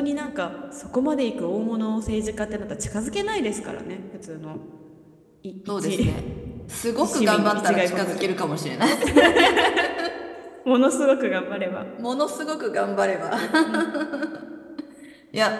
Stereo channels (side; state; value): both; identical; correlation 1.00